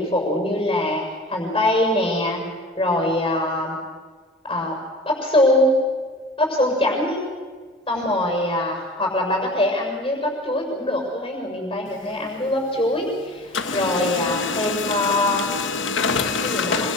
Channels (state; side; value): normal; both; correlation 0.38